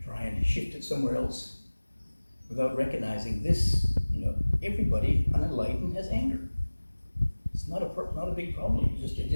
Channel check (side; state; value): both; inverted; correlation -1.00